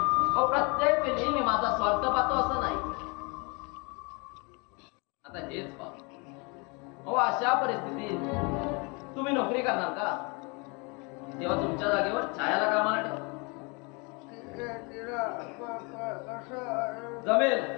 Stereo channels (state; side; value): quieter; right; 30.9 dB